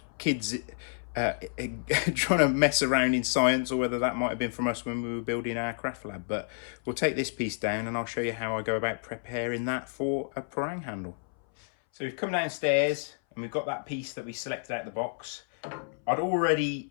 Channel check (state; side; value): silent; right; 58 dB below the other